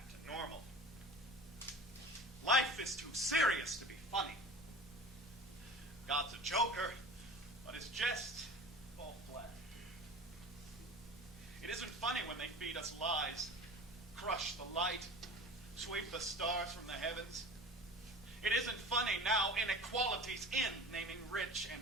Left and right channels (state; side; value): normal; both; correlation 0.38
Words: to normal. Life is too serious to be funny. God's a joker, but his jests fall flat. It isn't funny when they feed us lies, crush the light, sweep the stars from the heavens. It isn't funny now inequality's in, naming rich and